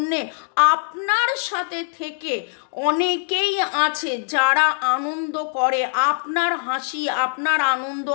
আপনার সাথে থেকে অনেকেই আছে যারা আনন্দ করে আপনার হাসি, আপনার আনন্দ,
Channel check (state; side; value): silent; right; digital silence